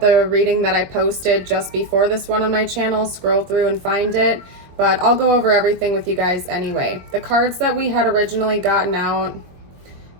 the reading that I posted just before this one on my channel. Scroll through and find it. But I'll go over everything with you guys anyway. The cards that we had originally gotten out,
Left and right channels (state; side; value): late; left; 22 ms